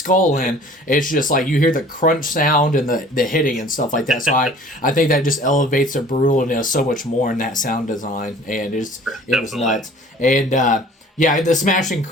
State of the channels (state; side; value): normal; both; correlation 0.49